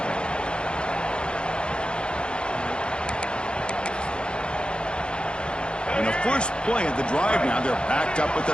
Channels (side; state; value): right; late; 0.053 ms